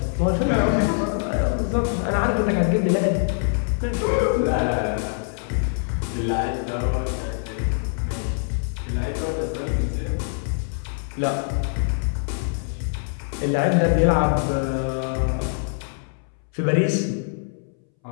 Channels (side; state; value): right; silent; 63 dB below the other